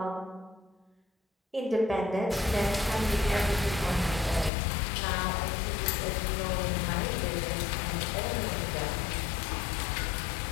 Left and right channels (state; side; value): drops out; right; at 4.5 s